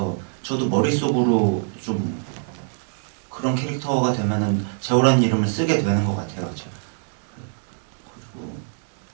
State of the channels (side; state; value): left; silent; digital silence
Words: 저도 머릿속으로 좀 그런 캐릭터가 되면은 재호라는 이름을 쓰게 되는 것 같아요. 제가. 그리고